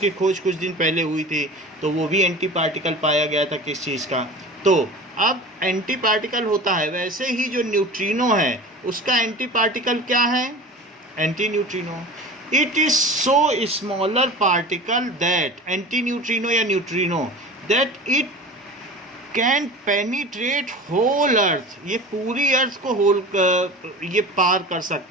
खोज कुछ दिन पहले हुई थी, तो वो भी एंटी पार्टिकल पाया गया था किस चीज़ का। तो अब एंटी पार्टिकल होता है, वैसे ही जो न्यूट्रिनो है उसका एंटी पार्टिकल क्या है? Antineutrino. It is so smaller particle that, antineutrino या neutrino, that it can penetrate whole earth, ये पूरी अर्थ को होल ये पार कर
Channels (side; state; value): both; normal; correlation 0.35